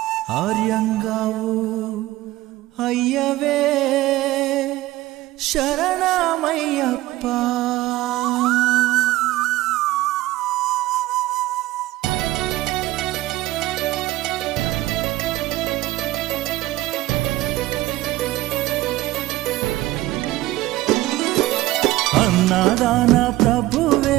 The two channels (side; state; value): left; quieter; 17.0 dB